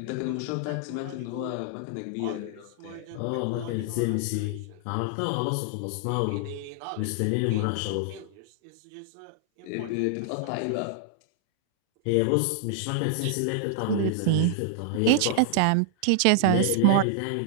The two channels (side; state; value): both; different; correlation -0.01